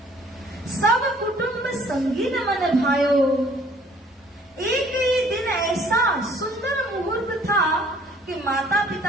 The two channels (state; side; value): normal; both; correlation 0.57